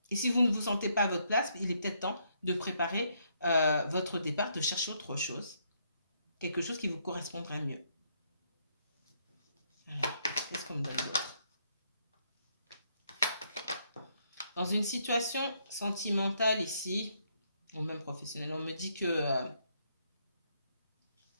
Et si vous ne vous sentez pas à votre place, il est peut-être temps de préparer votre départ, de chercher autre chose. Quelque chose qui vous correspondrait mieux. Alors, Qu'est-ce qu'on me donne d'autre? Dans une situation sentimentale ici, ou même professionnelle, on me dit que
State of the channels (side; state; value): both; inverted; correlation -0.73